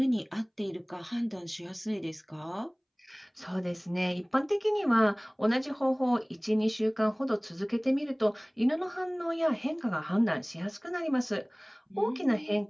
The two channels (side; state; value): both; identical; correlation 1.00